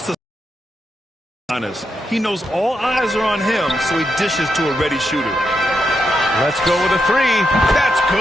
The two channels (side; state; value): both; normal; correlation 0.84